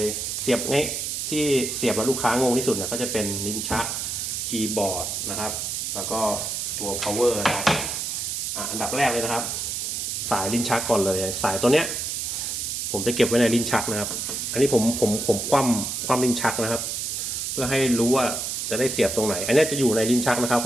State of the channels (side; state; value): right; noise; hiss, 3 dB below the sound